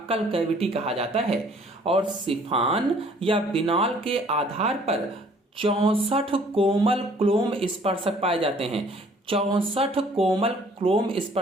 कैविटी कहा जाता है। और सिफान या बिनाल के आधार पर 64 कोमल क्लोम स्पर्शक पाए जाते हैं। 64 कोमल क्लोम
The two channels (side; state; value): both; normal; correlation 0.57